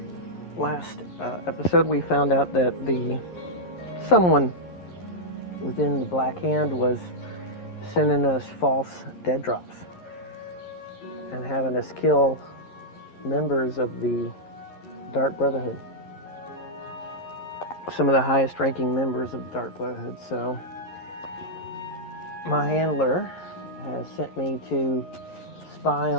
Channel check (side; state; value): right; late; 11 ms